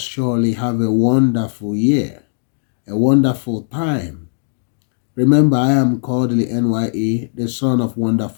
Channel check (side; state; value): right; silent; digital silence